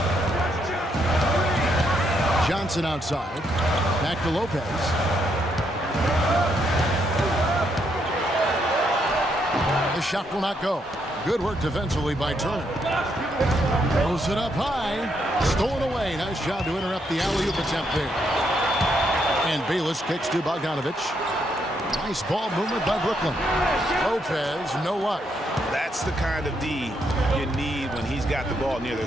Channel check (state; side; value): normal; both; correlation 0.76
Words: Johnson outside. Back to Lopez. The shot will not go. Good work defensively by Turner. Throws it up high. Stolen away. Nice job to interrupt the alley-oop attempt there. And Bayless kicks to Bogdanovich. Nice ball movement by Brooklyn. Lopez, no luck. That's the kind of D you need when he's got the ball near the